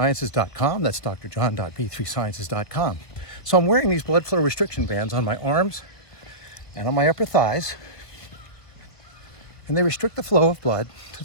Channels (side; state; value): right; late; 1.5 ms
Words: That's drjohn.b3sciences.com. So I'm wearing these blood flow restriction bands on my arms and on my upper thighs, and they restrict the flow of blood to